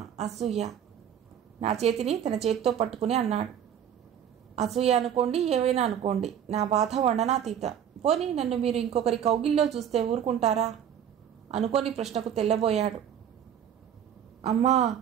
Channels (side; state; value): left; quieter; 9.2 dB